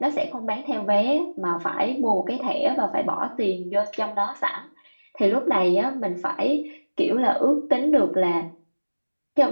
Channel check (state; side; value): inverted; both; correlation -1.00